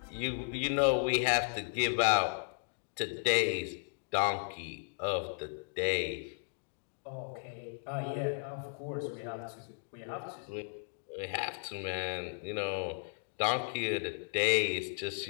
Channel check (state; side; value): silent; right; digital silence